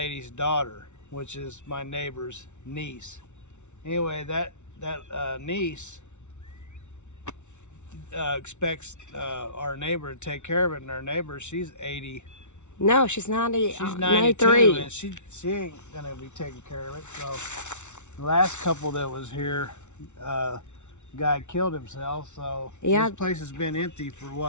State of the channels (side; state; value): right; late; 0.83 ms